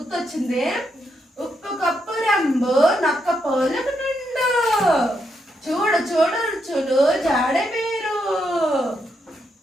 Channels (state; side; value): normal; both; correlation 0.80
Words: ఉప్పు కప్పు రంబు నక్క పోలకు నిండు, చూడు చూడు రుచులు జాడ వేరు,